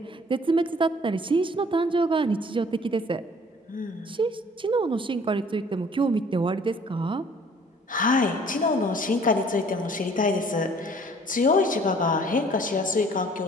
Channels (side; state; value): both; normal; correlation 0.55